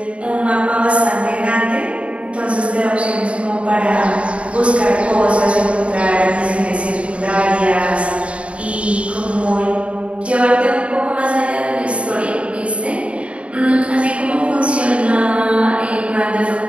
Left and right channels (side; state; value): left; late; 0.061 ms